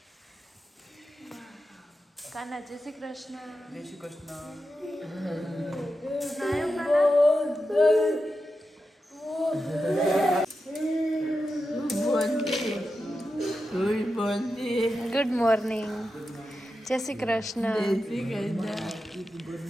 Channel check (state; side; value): normal; both; correlation 0.90